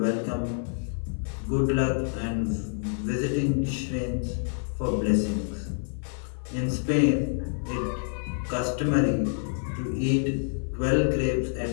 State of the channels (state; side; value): silent; right; 57 dB below the other